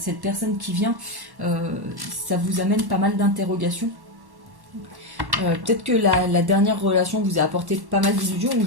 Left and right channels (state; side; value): late; left; 1.1 ms